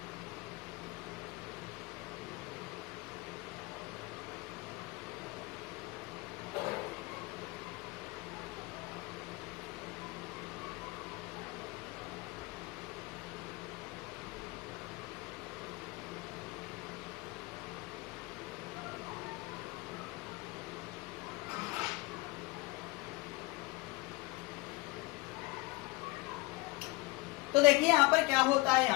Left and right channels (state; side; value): quieter; right; 23.3 dB